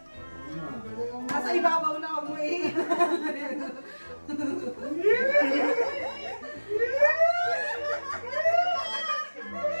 nasa ibabaw na ako eh.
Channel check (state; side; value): inverted; both; correlation -1.00